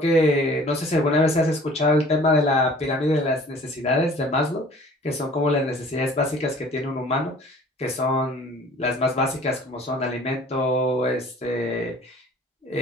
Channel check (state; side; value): normal; both; correlation 0.50